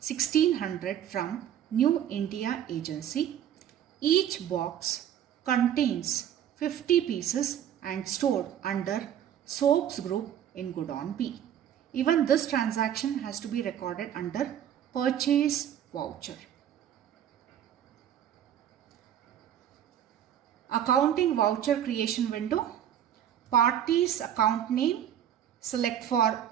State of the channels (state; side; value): quieter; left; 10.3 dB